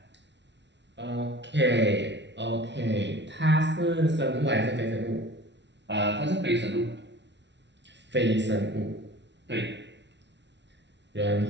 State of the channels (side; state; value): left; late; 0.51 ms